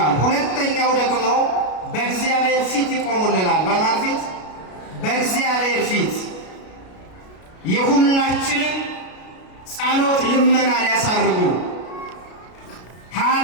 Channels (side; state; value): right; late; 33 ms